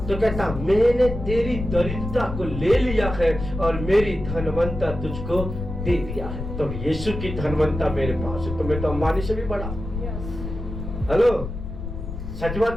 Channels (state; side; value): noise; left; rumble, 7 dB below the sound